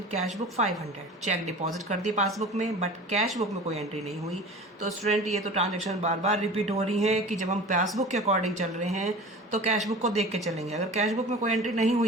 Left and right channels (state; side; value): normal; both; correlation 0.38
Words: cash book 500। Cheque deposit कर दिए पासबुक में, बट कैश बुक में कोई एंट्री नहीं हुई। तो स्टूडेंट ये तो ट्रांजेक्शन बार बार रिपीट हो रही है कि जब हम पासबुक के अकॉर्डिंग चल रहे हैं तो कैश बुक को देख के चलेंगे। अगर कैश बुक में कोई एंट्री नहीं